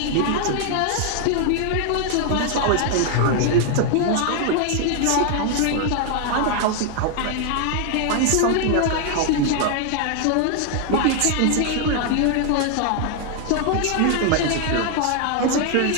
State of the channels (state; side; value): different; both; correlation 0.00